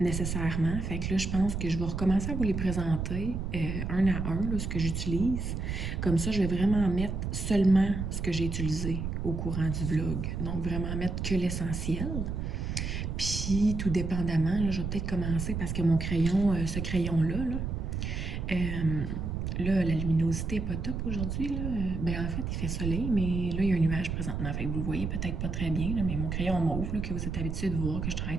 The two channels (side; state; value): right; noise; rumble, 3 dB below the sound